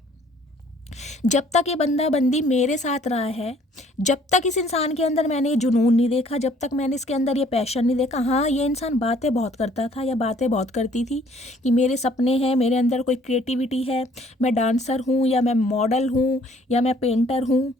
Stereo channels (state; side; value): normal; both; correlation 0.59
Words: जब तक ये बंदा बंदी मेरे साथ रहा है, जब तक इस इंसान के अंदर मैंने ये जुनून नहीं देखा, जब तक मैंने इसके अंदर ये पैशन नहीं देखा। हाँ, ये इंसान बातें बहुत करता था या बातें बहुत करती थी कि मेरे सपने हैं, मेरे अंदर कोई क्रिएटिविटी है, मैं डांसर हूँ या मैं मॉडल हूँ या मैं पेंटर हूँ,